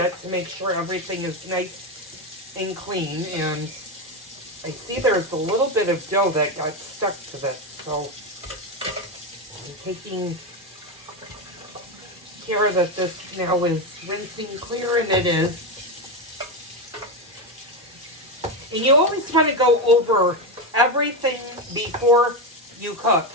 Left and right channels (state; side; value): normal; both; correlation 0.12